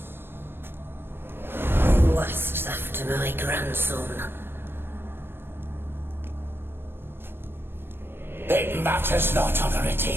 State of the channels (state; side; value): late; left; 0.11 ms